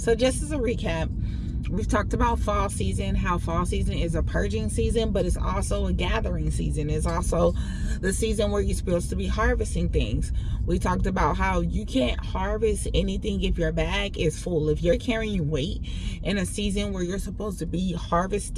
just as a recap, we've talked about fall season, how fall season is a purging season, but it's also a gathering season. It's also the season where you're supposed to be harvesting things. We talked about how you can't harvest anything if your bag is full. If you're carrying weight in a season where you're supposed to be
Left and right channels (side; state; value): both; identical; correlation 1.00